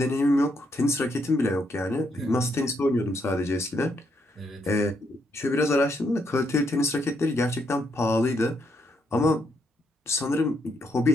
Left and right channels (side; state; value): both; normal; correlation 0.76